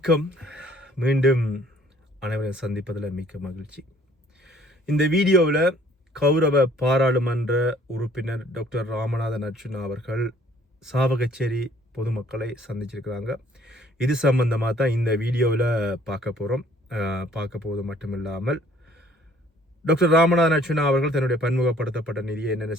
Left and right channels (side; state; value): both; normal; correlation 0.58